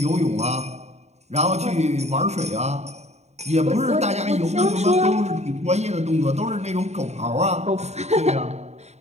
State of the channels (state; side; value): late; left; 0.32 ms